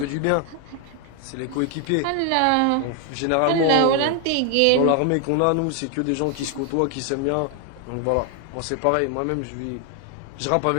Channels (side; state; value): both; different; correlation 0.00